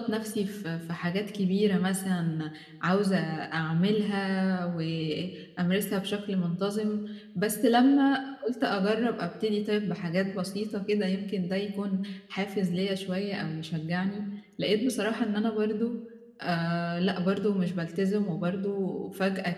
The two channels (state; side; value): identical; both; correlation 1.00